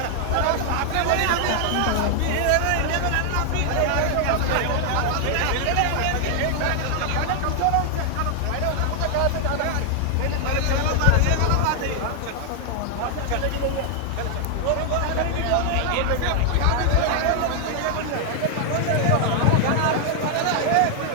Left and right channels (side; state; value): both; different; correlation 0.00